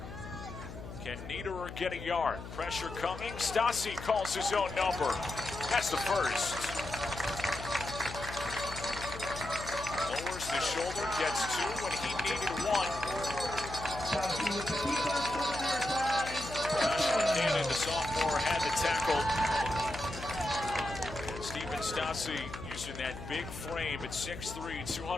Can Niederer get a yard? Pressure coming. Stasi calls his own number. That's the first. Lowers the shoulder, gets 2 when he needed 1. Cannon, the sophomore, had the tackle. Stephen Stasi using that big frame at 6'3",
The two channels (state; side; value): noise; left; hum, 11 dB below the sound